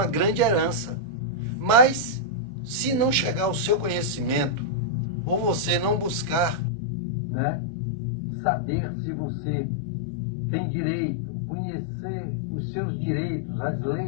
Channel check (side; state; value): right; drops out; at 6.6 s